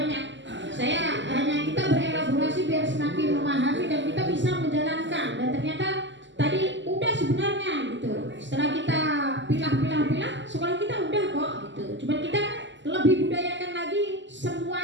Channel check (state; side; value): late; left; 0.54 ms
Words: Saya hanya kita berelaborasi biar semakin memahami dan kita bisa menjalankan. Dan ternyata tadi udah sebenarnya gitu. Setelah kita pilah, sekolah kita udah kok gitu. Cuma kita lebih budayakan lagi